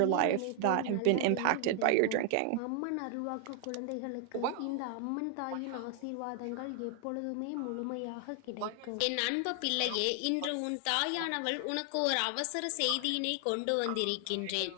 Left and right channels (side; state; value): both; different; correlation 0.00